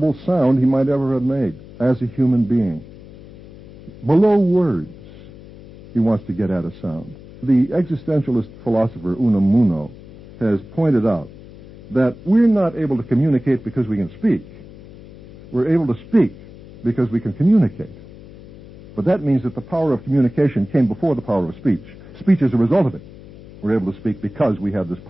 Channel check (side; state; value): left; noise; hum, 19 dB below the sound